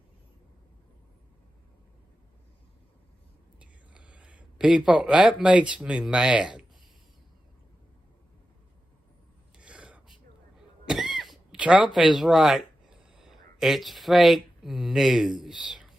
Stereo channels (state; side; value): normal; both; correlation 0.91